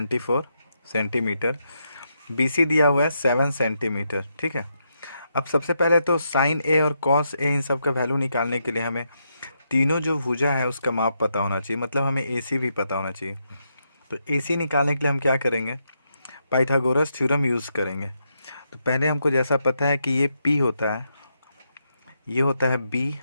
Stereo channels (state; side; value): inverted; both; correlation -0.81